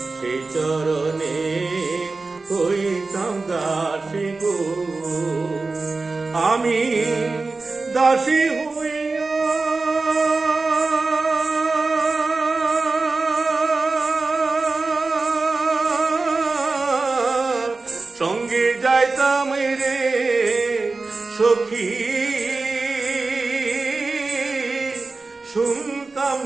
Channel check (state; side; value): quieter; left; 3.7 dB